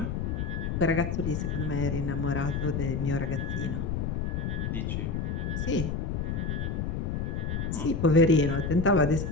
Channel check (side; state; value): left; noise; rumble, 1 dB below the sound